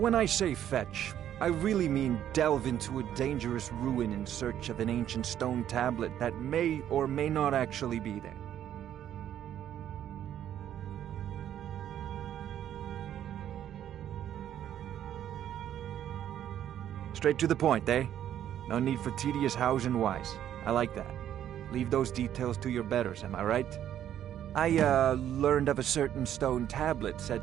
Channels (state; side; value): quieter; left; 10.7 dB